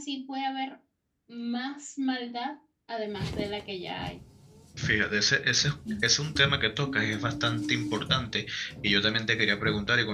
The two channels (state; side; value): identical; both; correlation 1.00